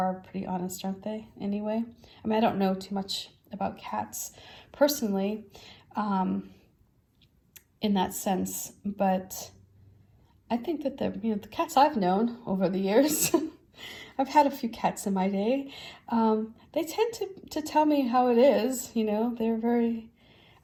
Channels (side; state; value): both; identical; correlation 1.00